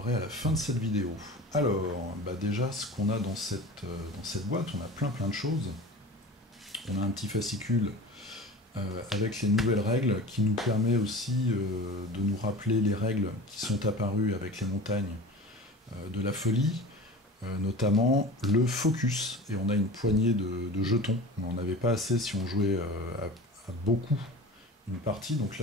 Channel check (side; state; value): both; normal; correlation 0.36